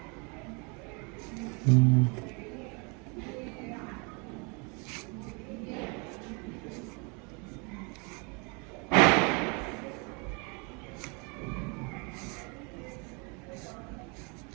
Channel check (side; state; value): left; quieter; 32.2 dB